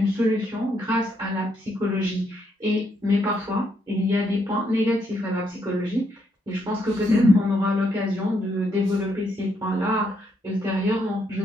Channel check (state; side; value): normal; both; correlation 0.75